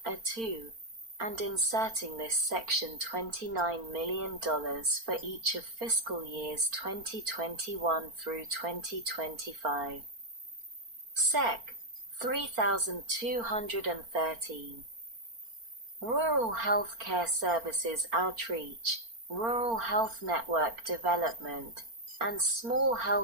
2, and inserting this section $29 million for each of fiscal years 2021 through 2025. Sec. 3213. Rural Health Care Services Outreach, Rural Health Network Development, and Small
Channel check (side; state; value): left; late; 4.4 ms